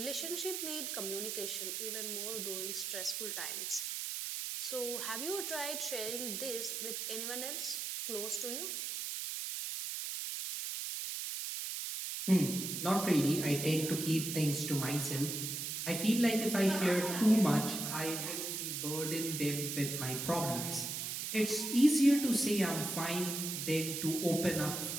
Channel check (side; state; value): right; noise; hiss, 3 dB below the sound